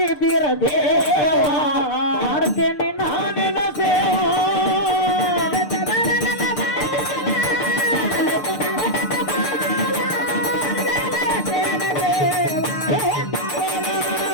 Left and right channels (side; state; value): right; late; 6.7 ms